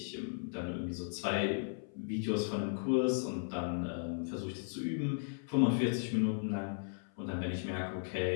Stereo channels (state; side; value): silent; right; 54 dB below the other